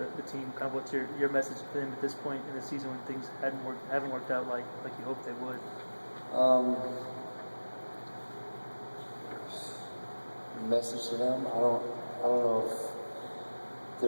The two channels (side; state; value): both; inverted; correlation -1.00